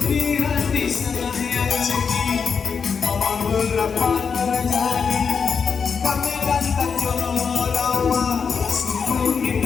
dapat terjadi. Kami dan Tanjung Rawa sungguh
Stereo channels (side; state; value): right; quieter; 6.0 dB